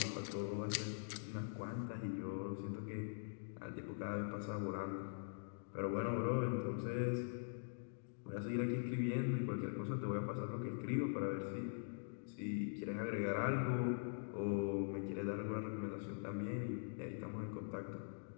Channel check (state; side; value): silent; right; digital silence